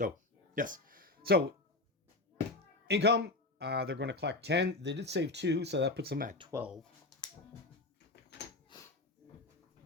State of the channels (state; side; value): quieter; right; 3.0 dB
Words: yes. So, income, they're going to collect 10. They did save 2, so that puts them at 12.